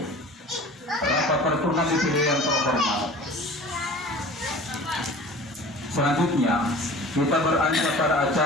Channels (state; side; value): normal; both; correlation 0.42